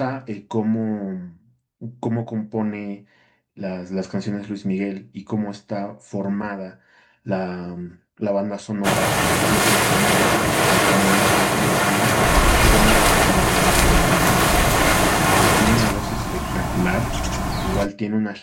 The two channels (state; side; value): identical; both; correlation 1.00